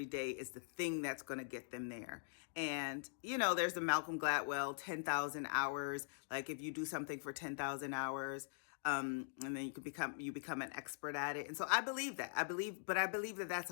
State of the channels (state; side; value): silent; right; digital silence